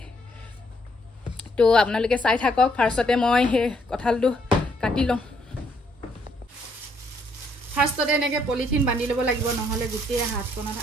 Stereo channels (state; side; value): normal; both; correlation 0.70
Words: তো আপোনালোকে চাই থাকক ফাৰ্ষ্টতে মই হে কঁঠালটো কাটি লম ফাৰ্ষ্টতে এনেকে পলিথিন বান্ধি লব লাগিব নহলে গুটেই হাতখনত